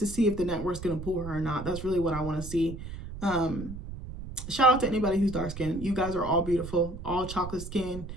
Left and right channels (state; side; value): noise; right; rumble, 10 dB below the sound